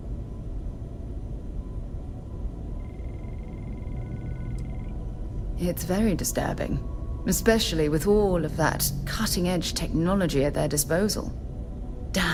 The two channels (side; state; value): both; identical; correlation 1.00